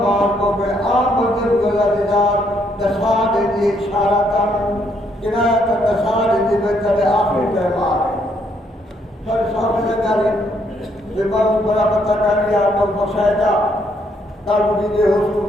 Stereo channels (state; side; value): normal; both; correlation 0.72